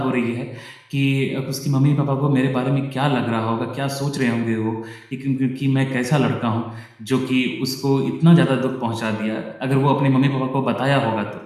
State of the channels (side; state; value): both; identical; correlation 1.00